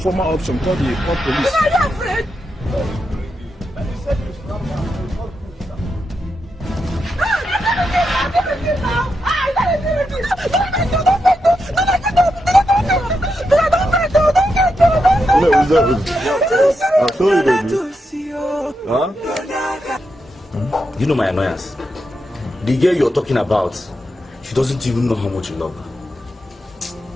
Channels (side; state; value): both; normal; correlation 0.85